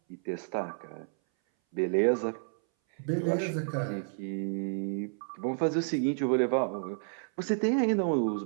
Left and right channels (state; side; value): silent; left; 57 dB below the other